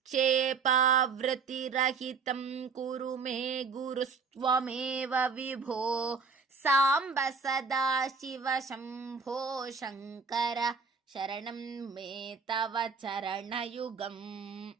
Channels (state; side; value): quieter; left; 5.2 dB